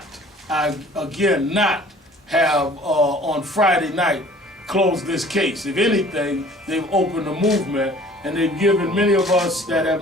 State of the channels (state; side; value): normal; both; correlation 0.50